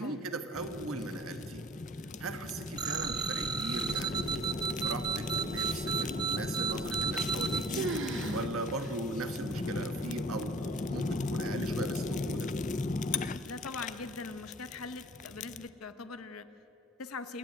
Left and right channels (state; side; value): normal; both; correlation 0.48